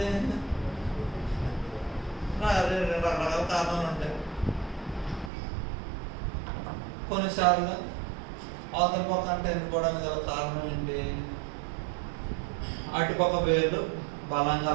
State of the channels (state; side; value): drops out; left; at 5.3 s